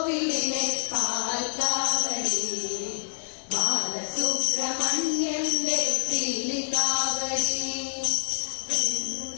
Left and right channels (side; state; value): right; silent; digital silence